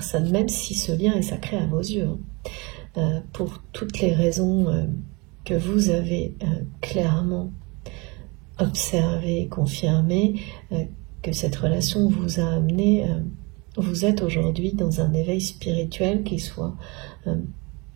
même si ce lien est sacré à vos yeux, pour toutes les raisons que vous avez clairement observées, confirmées, que cette relation vous a amené, vous êtes aujourd'hui dans un éveil spirituel qui soit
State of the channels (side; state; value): left; quieter; 27.4 dB